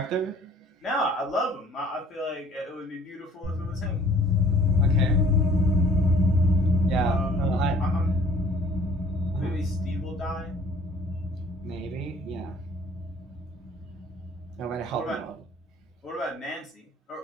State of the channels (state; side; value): normal; both; correlation 0.54